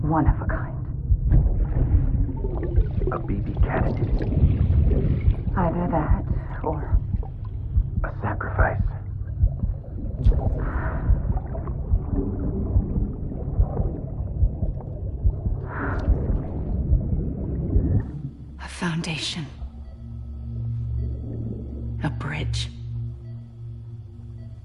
One of a kind. A BB cat. Either that, or... A sacrifice. a foundation. A bridge.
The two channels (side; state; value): both; identical; correlation 1.00